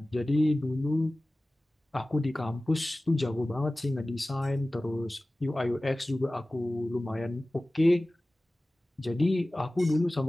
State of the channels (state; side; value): normal; both; correlation 0.97